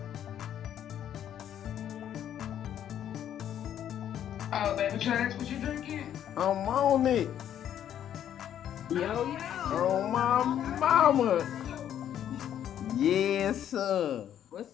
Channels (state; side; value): quieter; right; 10.3 dB